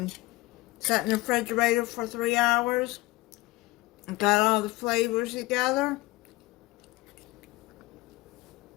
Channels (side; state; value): right; quieter; 20.2 dB